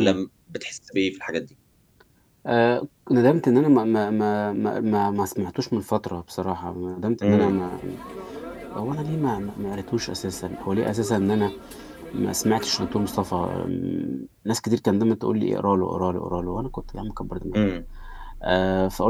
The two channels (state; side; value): identical; both; correlation 1.00